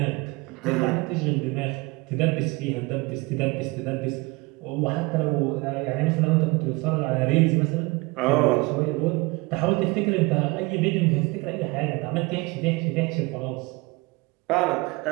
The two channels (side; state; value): left; quieter; 24.5 dB